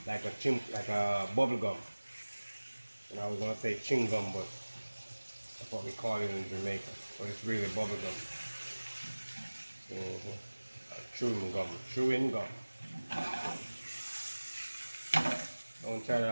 like a bubble gum. And I was going to say chewing gum, but that's what we call it in Jamaica. But it's really bubble gum. Chewing gum. Don't try that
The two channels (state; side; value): inverted; both; correlation -1.00